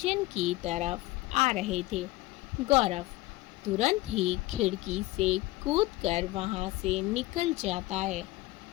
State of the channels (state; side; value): quieter; right; 19.0 dB